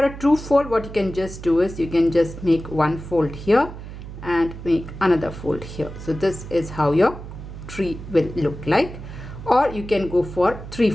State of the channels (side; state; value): right; noise; hum, 12 dB below the sound